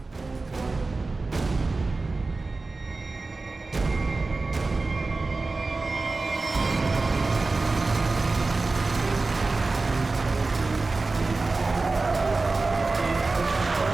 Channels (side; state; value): left; quieter; 3.6 dB